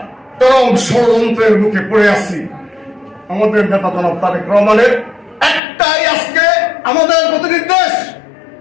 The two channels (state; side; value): drops out; right; at 5.6 s